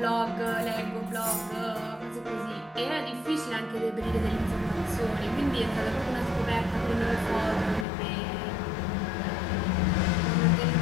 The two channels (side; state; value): right; drops out; at 7.9 s